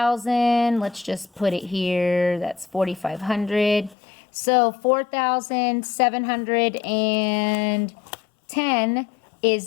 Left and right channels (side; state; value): right; drops out; at 4.0 s